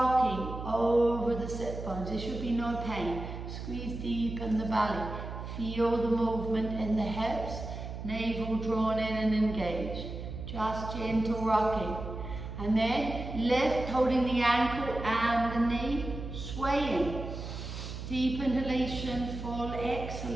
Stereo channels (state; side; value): noise; right; hum, 8 dB below the sound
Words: over the sit bones. There should be no pain. Squeeze deep in the belly. Feel the movement in the hips. Navel drawn in and engaged. Just gentle rocking. And then lift, holding the ankle and the knee. Swaying. Deep inhalation, full